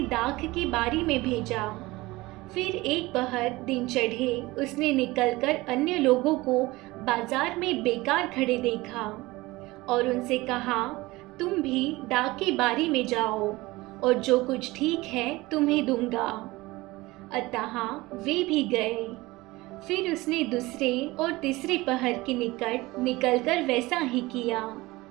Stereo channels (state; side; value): quieter; left; 20.5 dB